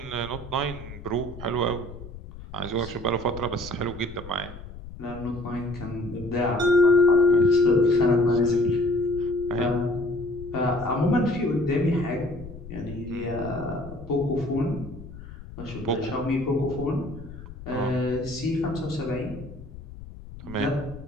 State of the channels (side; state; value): left; noise; rumble, 14 dB below the sound